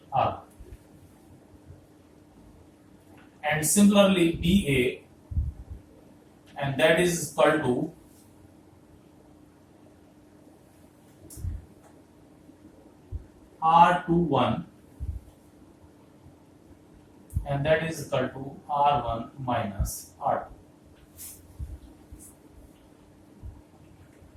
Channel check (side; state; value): both; identical; correlation 1.00